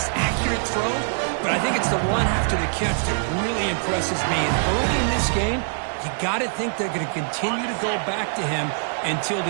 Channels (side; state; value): left; silent; digital silence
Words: accurate throw. But I think it's the run after the catch that really impresses me. And early in this game, you got to think they're going to continue to go back to him until